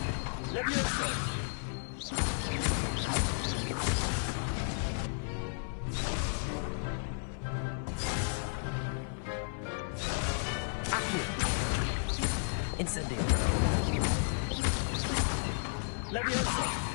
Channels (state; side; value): silent; right; 56 dB below the other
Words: Levioso! Accio! Incendio! Levioso!